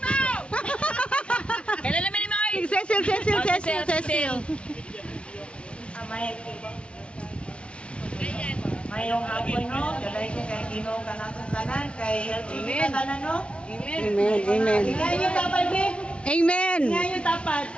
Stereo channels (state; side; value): late; right; 0.059 ms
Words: Kailan namin ni Mike? Cecil. Mayong hapon no, galay ko kay Ginoo kanatong tanan kay LTV tanan no. Amen. Ngayon dapat be. Amen. Ngayon dapat.